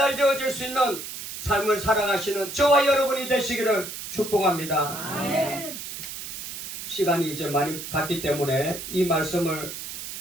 수 있는 삶을 살아가시는 저와 여러분이 되시기를 축복합니다. 아멘. 시간이 이제 많이 갔기 때문에 이 말씀을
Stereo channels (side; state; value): right; noise; hiss, 8 dB below the sound